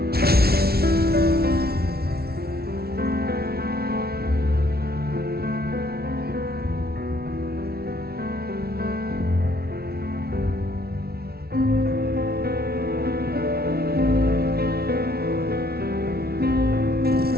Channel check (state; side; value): late; left; 0.45 ms